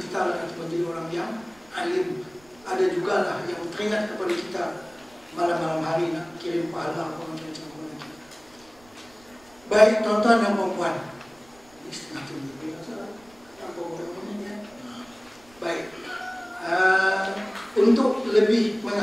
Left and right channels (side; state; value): right; noise; rumble, 28 dB below the sound